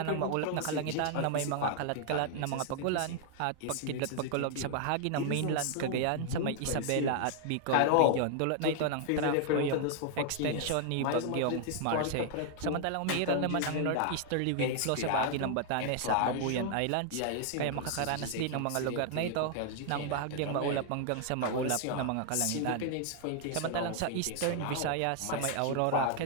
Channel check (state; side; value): different; both; correlation 0.00